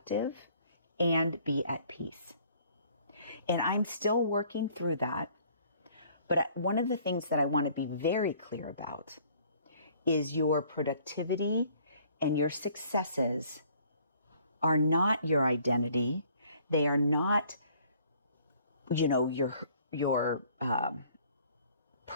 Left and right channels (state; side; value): inverted; both; correlation -0.58